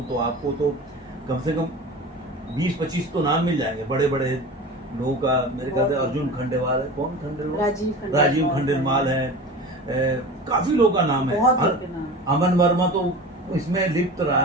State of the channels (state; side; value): normal; both; correlation 0.34